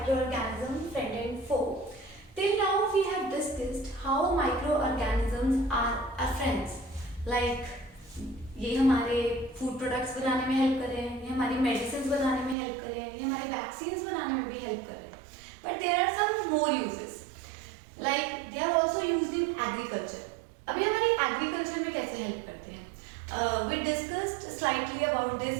Friend and Foe, till now we have discussed how microorganisms are our friends. Like ये हमारे food products बनाने में help कर रहे हैं, ये हमारी medicine बनाने में हेल्प कर रहे हैं, ये हमारे वैक्सीन्स बनाने में भी हेल्प कर रहे हैं. But there are some more usages, like they are also used in agriculture. अभी हमारी एग्रीकल्चर में कैसे हेल्प करते हैं? We discussed slightly about this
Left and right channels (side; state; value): left; drops out; at 12.6 s